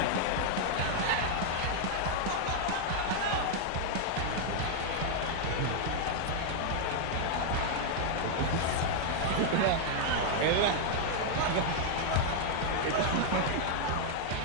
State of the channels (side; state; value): both; different; correlation 0.00